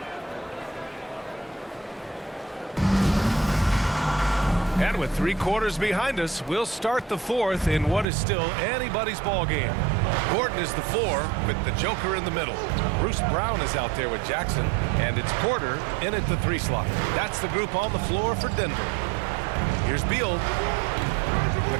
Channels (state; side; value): drops out; left; at 8.1 s